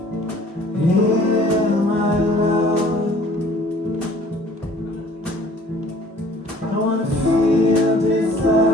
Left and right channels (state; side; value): normal; both; correlation 0.53